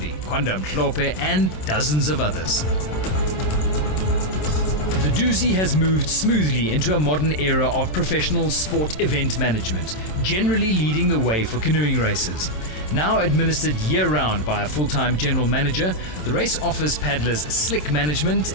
Kwanda Mhlope, and dozens of others. The Dusi has moved smoothly into a modern era of professional sport event management, generally leading the way for canoeing races. Now administered year-round by a full-time general manager, the race offers paddlers slick management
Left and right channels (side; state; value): right; late; 27 ms